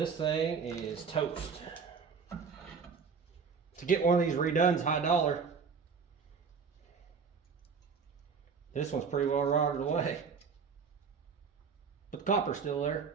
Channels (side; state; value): left; quieter; 5.7 dB